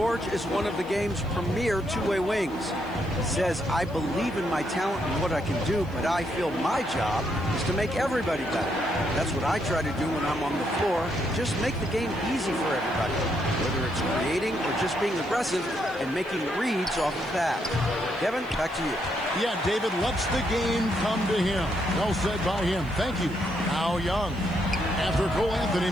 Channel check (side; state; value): right; noise; hiss, 27 dB below the sound